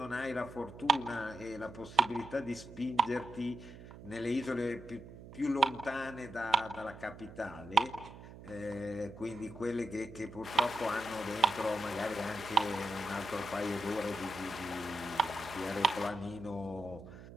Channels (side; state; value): right; noise; hum, 16 dB below the sound